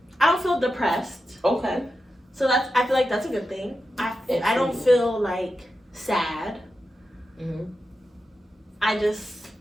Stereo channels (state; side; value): normal; both; correlation 0.90